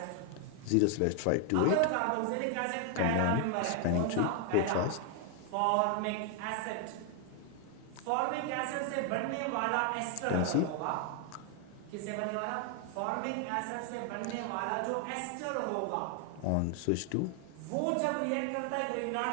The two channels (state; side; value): different; both; correlation 0.00